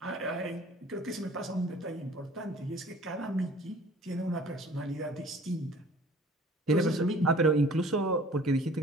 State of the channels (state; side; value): normal; both; correlation 0.50